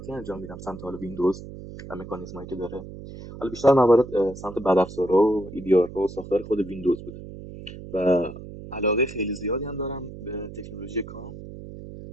انجام میدم سمت حالا ویندوز و مکانیزمایی که داره. حالا بیشتر موارد سمت بدافزارها و ایدیارها و ساختار خود ویندوز بوده و علاقه خیلی زیادی هم دارم به تکنولوژی کام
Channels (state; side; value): noise; right; hum, 13 dB below the sound